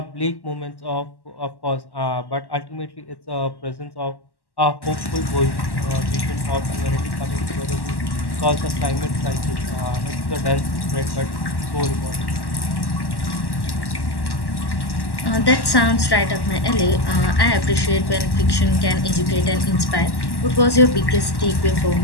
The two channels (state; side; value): late; right; 1.1 ms